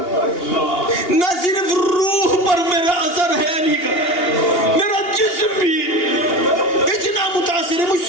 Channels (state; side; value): late; right; 2.8 ms